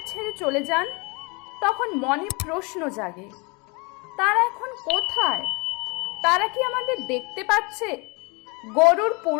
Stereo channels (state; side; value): quieter; right; 29.2 dB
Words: ছেড়ে চলে যান, তখন মনে প্রশ্ন জাগে, তারা এখন কোথায়? তারা কি আমাদের দেখতে পাচ্ছে? গরুর